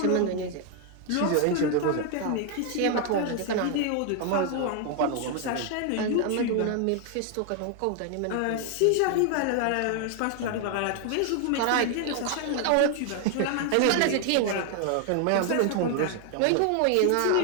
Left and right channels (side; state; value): both; different; correlation 0.00